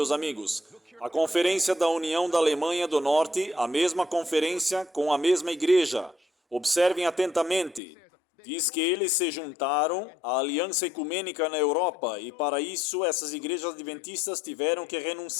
amigos. A Conferência da União da Alemanha do Norte, a mesma conferência com a mesma igreja. Observem atentamente. Diz que eles se juntaram à Aliança Ecumênica na Europa e para isso essas igrejas adventistas tiveram que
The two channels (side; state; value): right; drops out; at 7.8 s